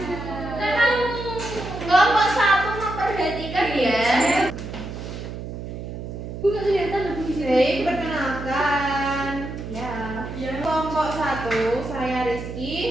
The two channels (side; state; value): right; noise; hum, 8 dB below the sound